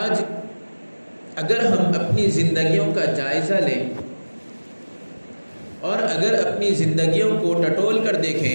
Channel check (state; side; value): inverted; both; correlation -1.00